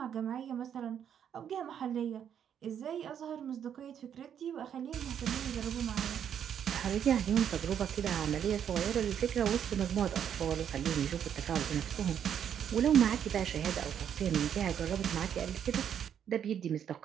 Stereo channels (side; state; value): left; quieter; 8.8 dB